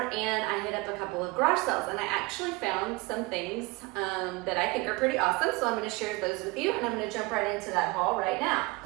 and I hit up a couple of garage sales, and I actually found some things that I think are pretty awesome, so I'm going to share those with you, and I'm going to jump right into that haul right now.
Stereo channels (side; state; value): left; quieter; 24.2 dB